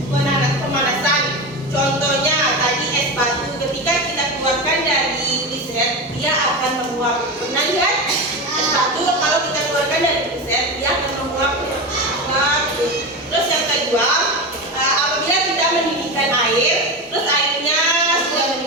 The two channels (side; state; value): both; normal; correlation 0.21